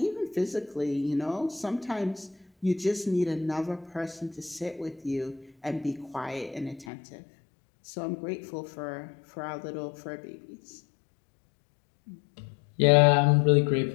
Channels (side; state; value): right; drops out; at 6.9 s